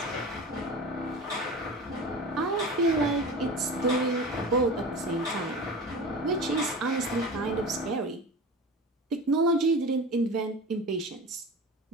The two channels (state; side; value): normal; both; correlation 0.32